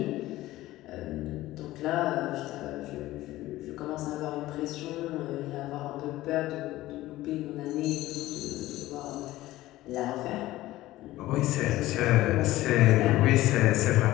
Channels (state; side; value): quieter; right; 16.5 dB